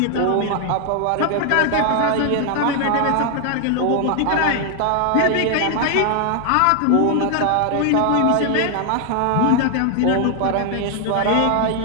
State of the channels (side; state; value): both; different; correlation 0.00